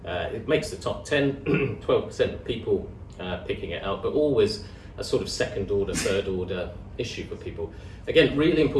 It makes the top 10, 12% of people picking it out, but always a sort of second order, third order issue for people. Again, really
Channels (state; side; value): identical; both; correlation 1.00